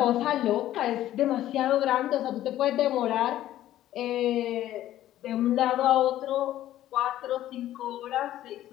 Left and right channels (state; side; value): quieter; right; 13.3 dB